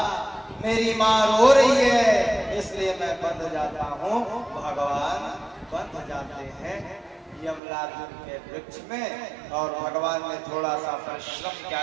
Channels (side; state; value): left; drops out; at 7.6 s